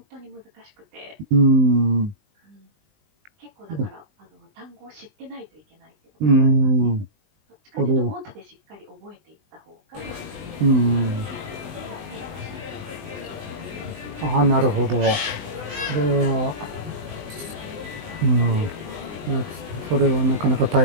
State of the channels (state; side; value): late; left; 20 ms